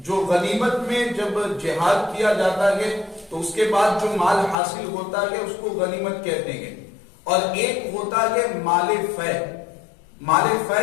جو غنیمت میں جب جہاد کیا جاتا ہے تو اس کے بعد جو مال حاصل ہوتا ہے اس کو غنیمت کہتے ہیں، اور ایک ہوتا ہے مال فے۔ مال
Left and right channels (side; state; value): right; drops out; at 4.5 s